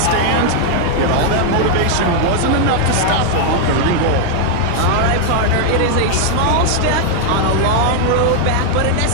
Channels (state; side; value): different; both; correlation 0.00